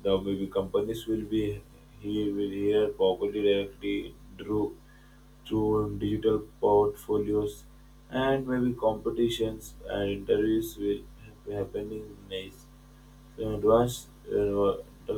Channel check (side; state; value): both; identical; correlation 1.00